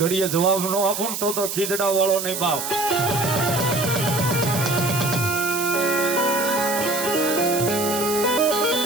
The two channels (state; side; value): noise; right; hiss, 5 dB below the sound